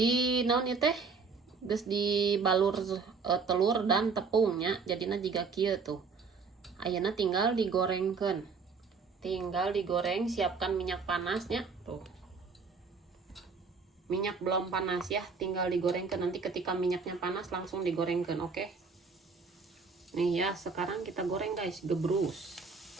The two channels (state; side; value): quieter; left; 4.9 dB